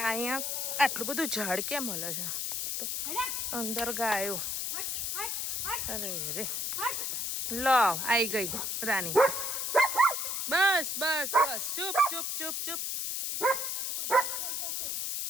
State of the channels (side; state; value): left; noise; hiss, 1 dB below the sound